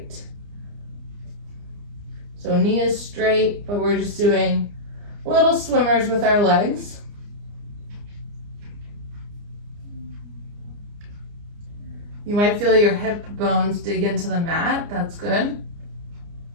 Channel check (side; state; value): left; late; 29 ms